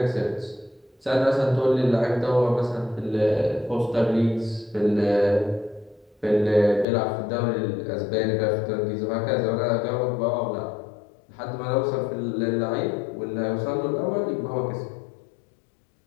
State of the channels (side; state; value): right; drops out; at 6.9 s